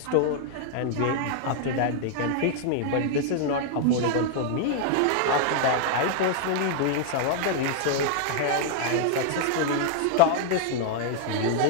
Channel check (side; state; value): both; different; correlation -0.01